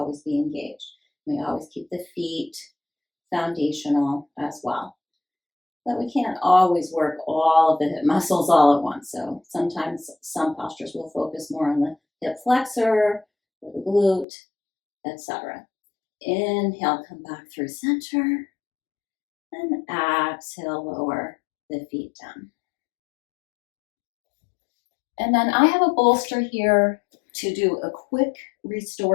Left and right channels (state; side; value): drops out; right; at 14.2 s